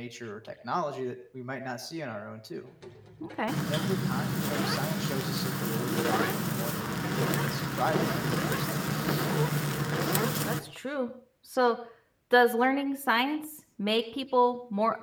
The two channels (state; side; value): identical; both; correlation 1.00